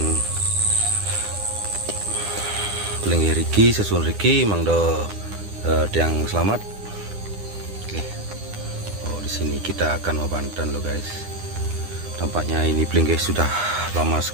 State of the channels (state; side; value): late; left; 9.9 ms